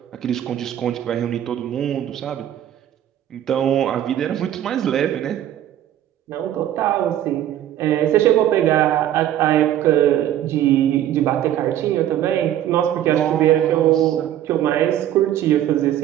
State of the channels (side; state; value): left; quieter; 11.8 dB